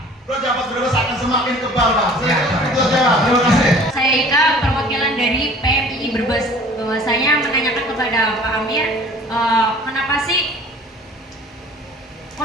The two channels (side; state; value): both; normal; correlation 0.48